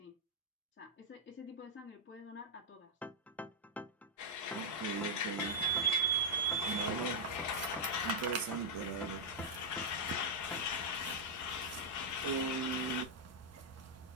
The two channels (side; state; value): both; normal; correlation -0.06